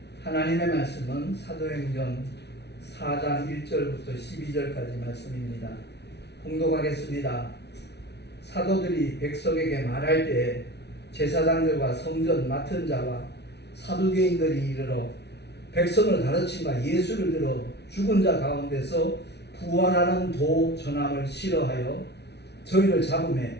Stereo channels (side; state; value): right; late; 0.49 ms